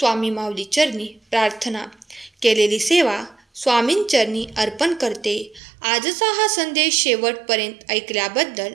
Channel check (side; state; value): left; drops out; at 5.6 s